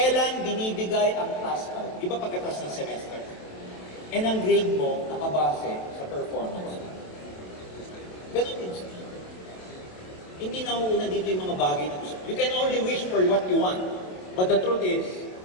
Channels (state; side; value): late; right; 27 ms